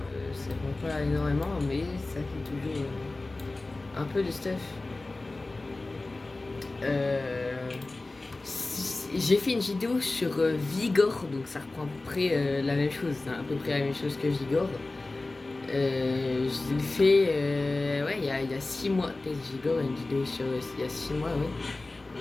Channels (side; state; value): right; quieter; 3.1 dB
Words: Ça prend pas énormément, mais ça fait toujours un peu de stuff. J'ai fait une vidéo sur Vigor, donc ça reprend à peu près la même chose, c'est à peu près la même chose que Vigor. Je l'ai fait ouais, il y a 6 mois, peut-être Vigor, une vidéo sur il y a 6 mois,